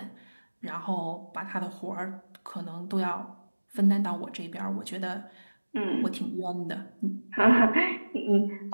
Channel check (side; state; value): both; inverted; correlation -1.00